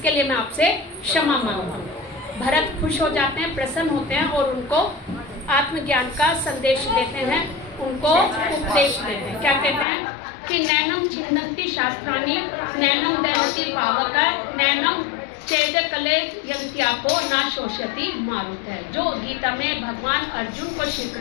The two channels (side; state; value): right; drops out; at 9.9 s